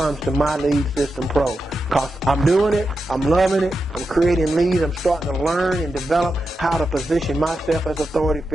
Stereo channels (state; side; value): normal; both; correlation 0.88